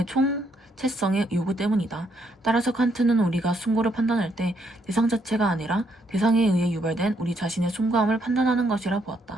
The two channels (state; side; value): normal; both; correlation 0.73